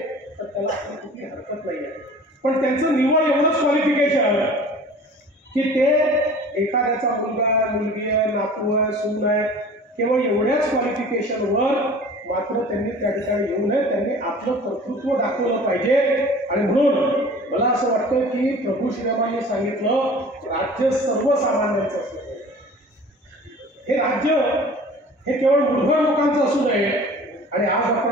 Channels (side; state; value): both; normal; correlation 0.44